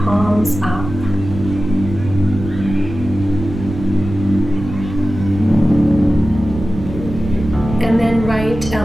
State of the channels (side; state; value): right; noise; rumble, 9 dB below the sound